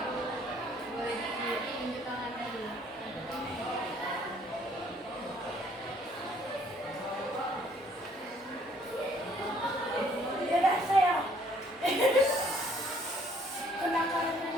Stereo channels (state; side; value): normal; both; correlation 0.62